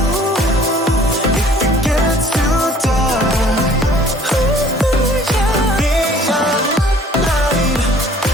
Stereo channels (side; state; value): both; normal; correlation 0.54